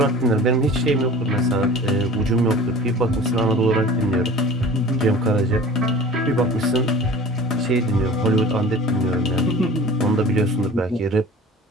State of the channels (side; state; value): both; normal; correlation 0.41